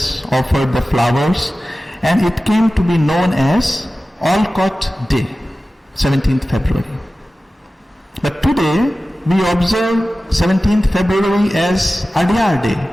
offered the flowers, and it came to be known as Olcott Day, 17th February. But today we observe 17th February as Adyar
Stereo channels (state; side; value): normal; both; correlation 0.96